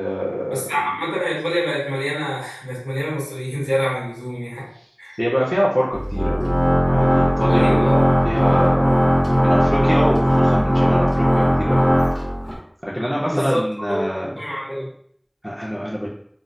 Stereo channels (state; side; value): identical; both; correlation 1.00